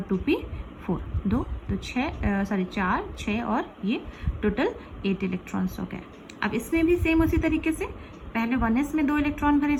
2p4, 2 तो 4 6 और ये टोटल 8 इलेक्ट्रॉन्स हो गए। अब इसमें भी सेम उसी तरीके से पहले 1s में 2 इलेक्ट्रॉन भरे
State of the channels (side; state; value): both; identical; correlation 1.00